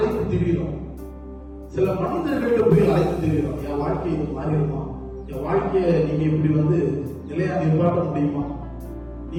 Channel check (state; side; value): identical; both; correlation 1.00